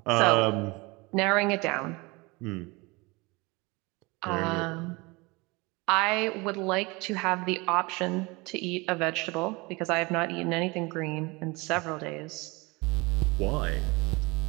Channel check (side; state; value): left; quieter; 25.3 dB